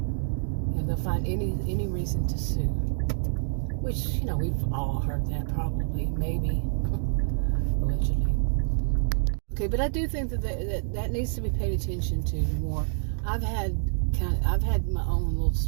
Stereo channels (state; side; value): silent; left; digital silence